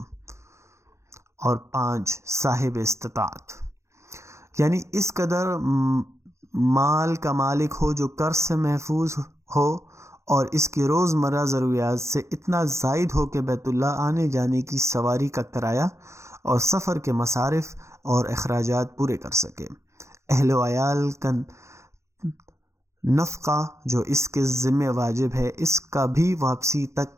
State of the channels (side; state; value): left; late; 0.14 ms